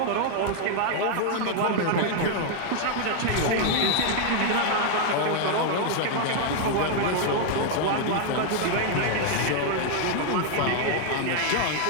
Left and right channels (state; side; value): different; both; correlation 0.00